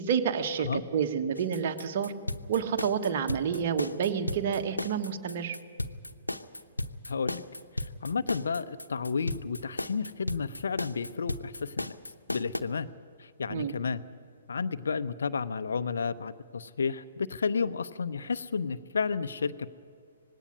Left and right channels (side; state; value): both; inverted; correlation -0.64